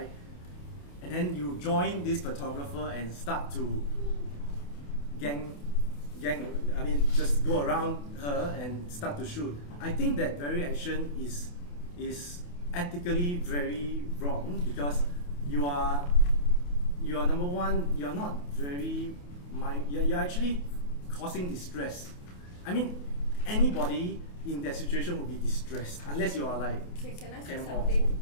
And then you join this photographer and start to just go around her and start to shoot. I think that very action is ethically very wrong because you are number one, you're not you're actually causing distress. I mean, anybody in that situation would be distressed unless you are Can I say Cam Hall. something?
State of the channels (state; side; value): late; right; 28 ms